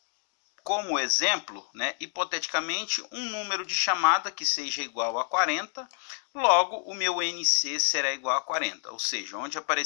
como exemplo, né, hipoteticamente, um número de chamada que seja igual a 40, logo o meu NC será igual a 40, ou seja, onde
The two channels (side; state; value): right; silent; digital silence